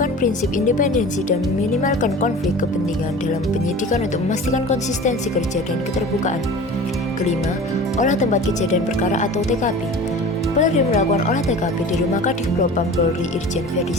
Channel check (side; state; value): both; normal; correlation 0.38